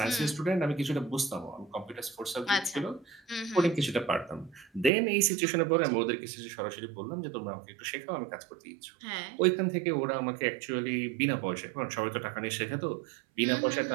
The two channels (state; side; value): drops out; left; at 4.9 s